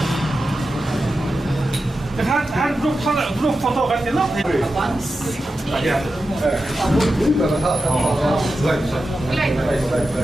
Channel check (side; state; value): both; normal; correlation 0.91